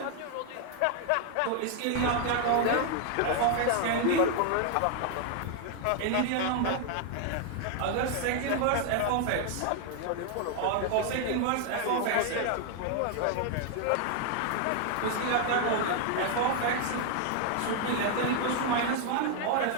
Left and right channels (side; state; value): both; different; correlation 0.00